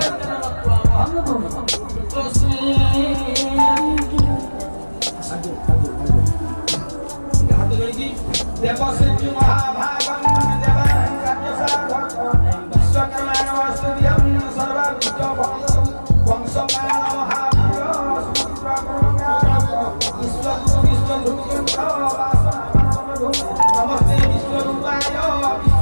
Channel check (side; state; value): both; inverted; correlation -1.00